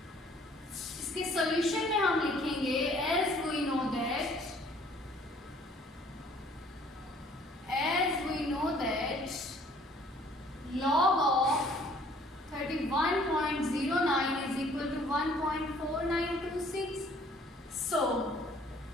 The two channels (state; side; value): normal; both; correlation 0.58